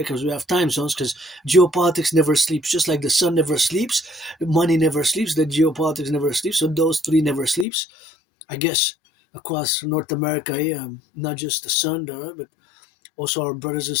Because we have time zones. Because geopolitics never sleeps, just like the sun never sleeps, money never sleeps, the geopolitics never sleeps. So those three never sleeps. I guess across North America, not just the sun, but also our brothers and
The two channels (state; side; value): drops out; right; at 7.7 s